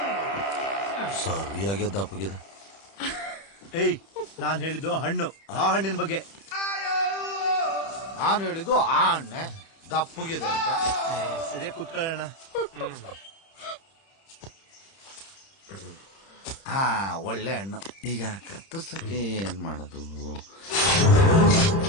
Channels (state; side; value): late; right; 30 ms